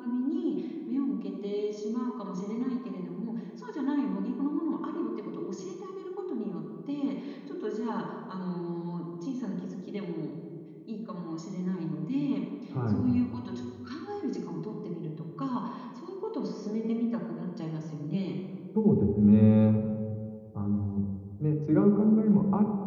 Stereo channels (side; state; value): both; identical; correlation 1.00